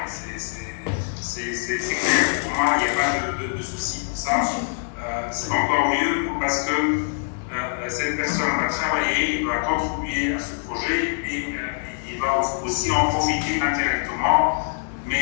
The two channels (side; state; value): right; silent; digital silence